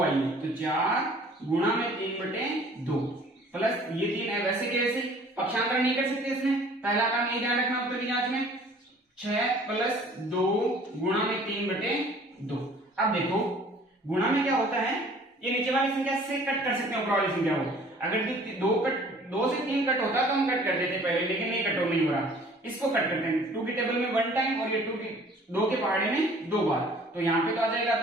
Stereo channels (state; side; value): normal; both; correlation 0.52